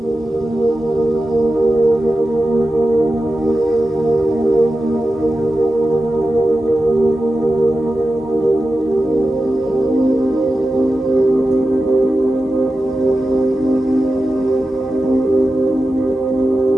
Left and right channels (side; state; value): both; normal; correlation 0.92